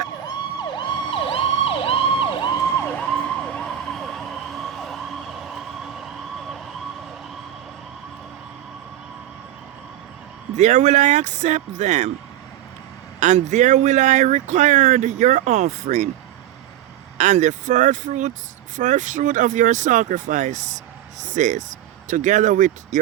I accept them, and there will I require your offering, and the first fruit of your sacrifices, together with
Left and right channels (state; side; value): quieter; left; 12.0 dB